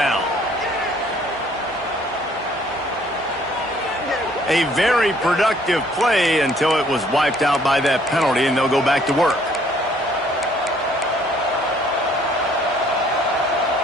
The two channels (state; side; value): normal; both; correlation 0.61